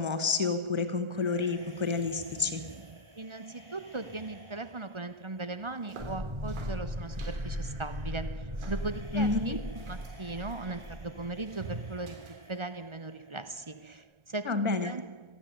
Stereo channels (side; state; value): left; late; 1.4 ms